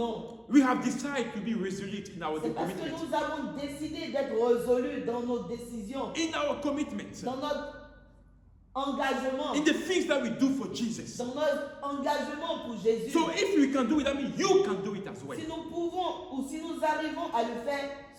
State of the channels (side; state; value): both; identical; correlation 1.00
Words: We have decided to be resolute in our C'est parce que commitment. nous avons décidé d'être résolus dans nos décisions, In our commitment. dans notre engagement, In the things that we do for Jesus. dans notre engagement pour Jésus. So if we can do it, that means you can do it as well. Si nous pouvons ou si nous arrivons à le faire,